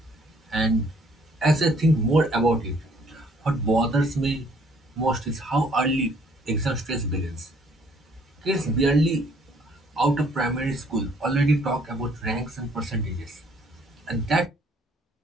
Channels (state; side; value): normal; both; correlation 0.62